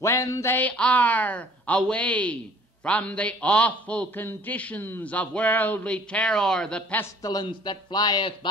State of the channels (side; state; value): both; normal; correlation 0.53